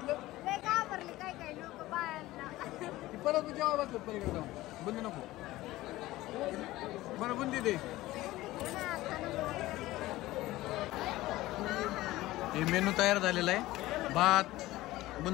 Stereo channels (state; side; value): quieter; right; 17.3 dB